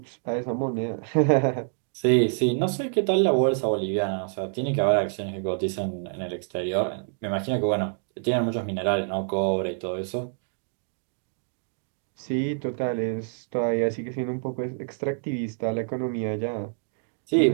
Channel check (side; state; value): left; silent; digital silence